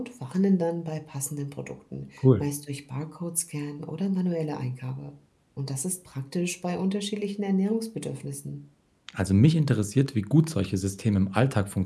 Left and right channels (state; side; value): identical; both; correlation 1.00